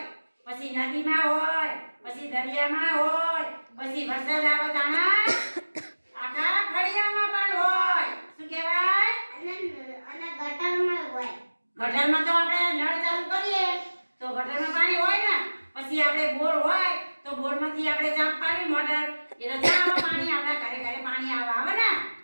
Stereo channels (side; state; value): both; inverted; correlation -1.00